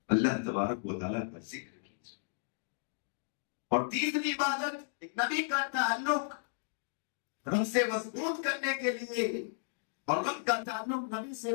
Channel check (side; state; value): right; silent; digital silence